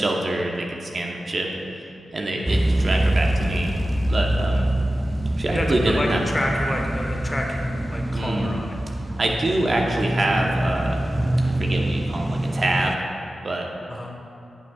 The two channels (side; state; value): both; normal; correlation 0.95